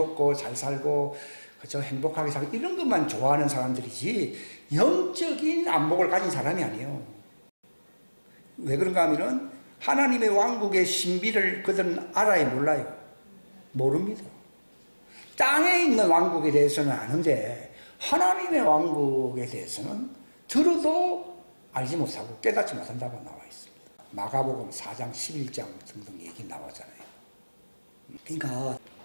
잘 살고 그저 행복하게 살고 이런 것만 좋아하는 사람들이지 영적인 안목을 가진 사람이 아니에요. 왜 그런가 하면은 하나님의 왕국의 신비를 그들은 알아야 몰라요. 모릅니다. 땅에 있는 왕국에 대해서는 아는데 하나님의 왕국에 대해서는 들어도 알지 못하고 깨닫지 못한다고 나와 있습니다. 마가복음 4장 11장 등등 얘기 나오잖아요. 그러니까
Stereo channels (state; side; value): inverted; both; correlation -1.00